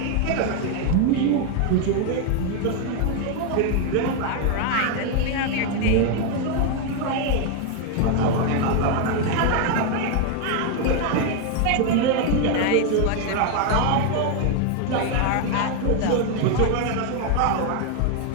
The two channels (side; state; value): both; different; correlation 0.01